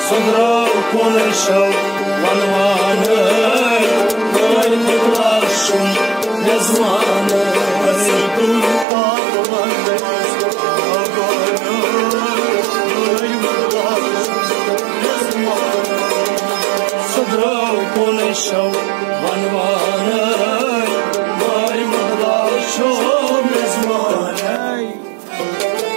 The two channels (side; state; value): left; drops out; at 8.8 s